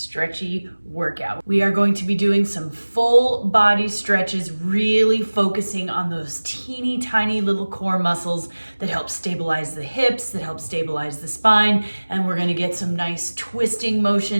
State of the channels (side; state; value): both; inverted; correlation -1.00